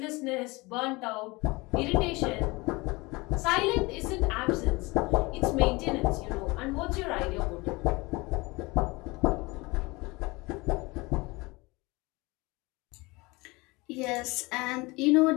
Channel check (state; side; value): quieter; right; 24.0 dB